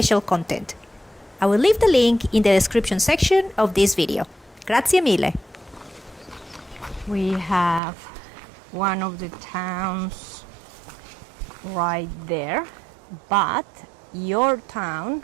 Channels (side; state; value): left; drops out; at 7.8 s